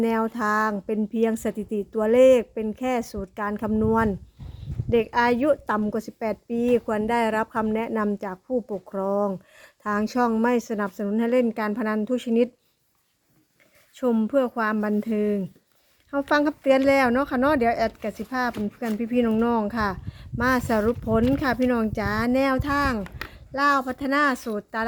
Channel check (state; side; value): identical; both; correlation 1.00